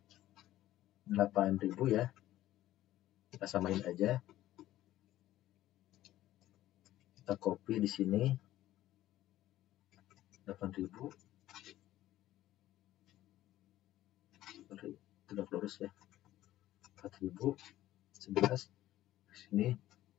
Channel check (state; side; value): quieter; right; 14.3 dB